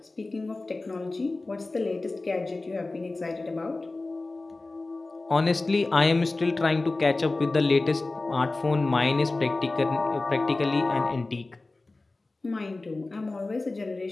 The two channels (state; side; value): quieter; right; 3.2 dB